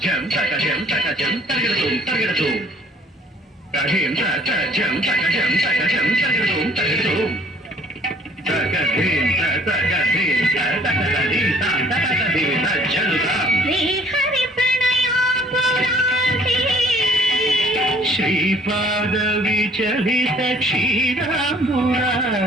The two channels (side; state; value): both; normal; correlation 0.57